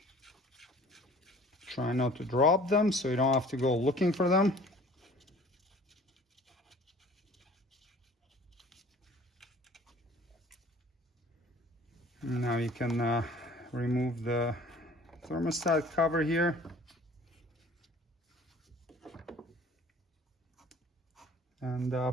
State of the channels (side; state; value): both; normal; correlation 0.50